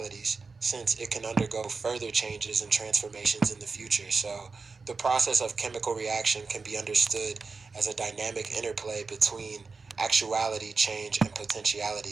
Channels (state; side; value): quieter; left; 4.4 dB